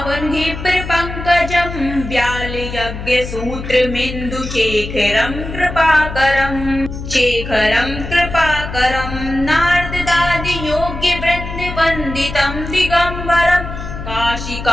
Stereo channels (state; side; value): noise; left; hum, 8 dB below the sound